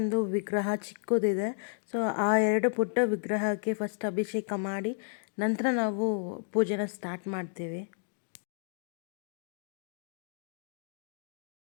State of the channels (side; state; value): right; silent; digital silence